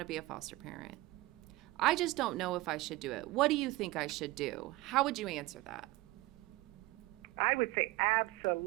to be a foster parent. I just don't know if I should do it. What do you think I should do? How would you answer that? I would say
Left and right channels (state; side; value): quieter; left; 19.7 dB